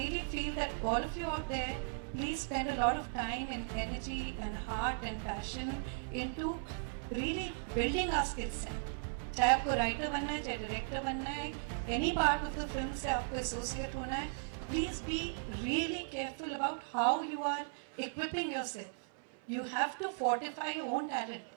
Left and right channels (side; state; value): left; silent; 53 dB below the other